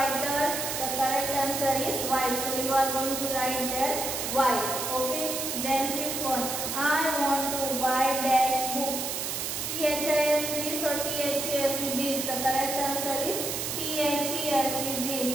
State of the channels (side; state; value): right; noise; hiss, 3 dB below the sound